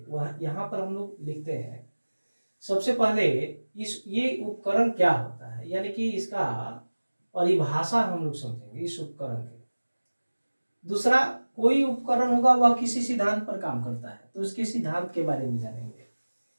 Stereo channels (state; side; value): inverted; both; correlation -1.00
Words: वह यहाँ पर हम लोग लिखते हैं। सबसे पहले ये उपकरण क्या होता है, यानी कि इसका परिभाषा हम लोग समझेंगे इस उपकरण की। दूसरा, कोई उपकरण होगा वह किसी सिद्धांत पर काम करता है तो उसके सिद्धांत के बारे में जानेंगे,